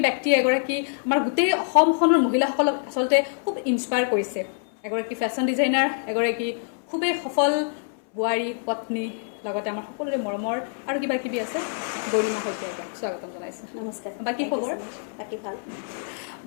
ব্যক্তিয়ে এগৰাকী আমাৰ গোটেই অসমখনৰ মহিলাসকলক আচলতে খুব ইনস্পায়াৰ কৰিছে। এগৰাকী ফেশ্বন ডিজাইনাৰ, এগৰাকী খুবেই সফল বোৱাৰী, পত্নী, লগতে আমাৰ সকলোৰে মৰমৰ আৰু কিবা কিবি আছে। গৰিমা শইকীয়াক স্বাগতম জনাইছোঁ। নমস্কাৰ। বাকী খবৰ? বাকী ভাল।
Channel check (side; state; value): right; silent; 62 dB below the other